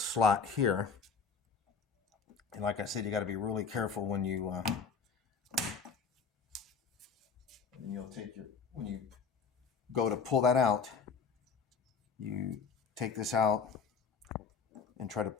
here. And like I said, you got to be really careful when you when you go to pull that out, you take this out and try to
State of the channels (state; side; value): quieter; right; 5.4 dB